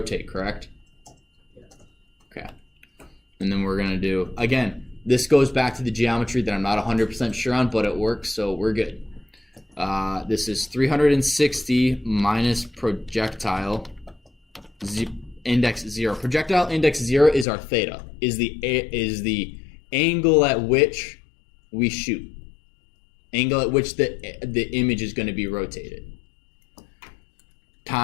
correct? Yeah. Okay. And then we're going to do, again, this goes back to the geometry that I'm not 100% sure on, but it works, so we're good. This is 360 minus projectile index 0. Projectile index 0 is our theta, is the angle at which we shoot. Angle at which the image is going to be rotated.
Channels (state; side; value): drops out; right; at 17.4 s